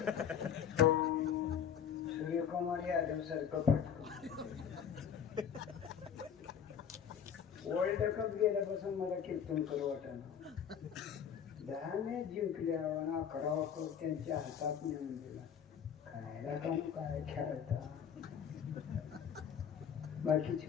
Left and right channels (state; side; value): quieter; right; 8.2 dB